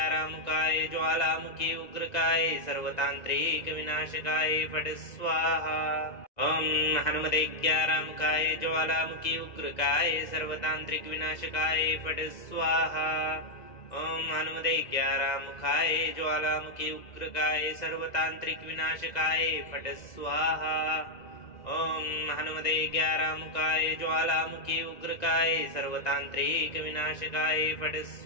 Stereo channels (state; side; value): late; right; 2.0 ms